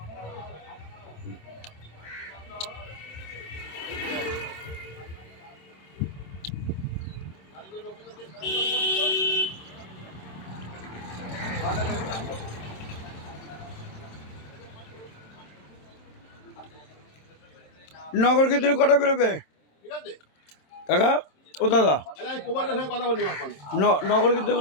নগর কীর্তনে কটা বেরোবে ঠিক আছে কাকা ও দাদা আচ্ছা আমি প্রবাসের সঙ্গে কথা বলি এখন নগর কীর্তন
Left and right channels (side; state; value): right; late; 27 ms